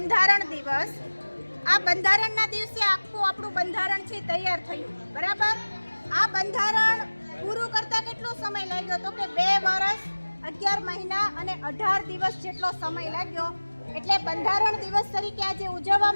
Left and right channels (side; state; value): both; inverted; correlation -1.00